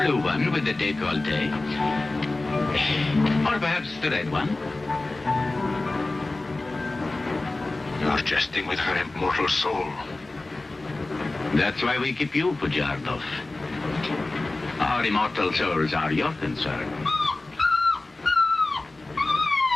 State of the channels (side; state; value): right; quieter; 3.1 dB